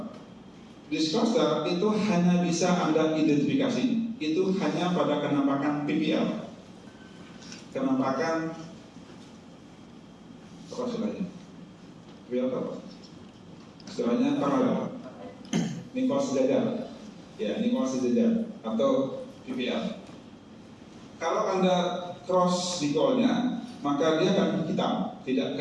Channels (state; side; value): identical; both; correlation 1.00